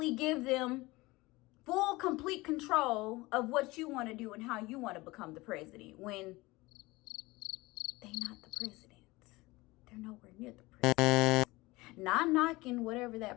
give them full, complete control of what you want to do and how you want to become the president when they're not the president. They're nowhere near the president. Not knocking whatever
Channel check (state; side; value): quieter; right; 21.4 dB